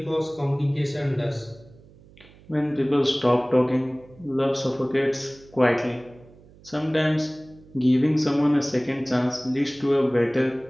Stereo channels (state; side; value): noise; right; hum, 25 dB below the sound